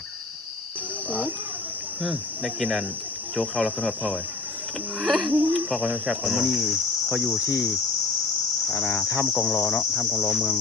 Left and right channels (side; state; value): right; quieter; 3.8 dB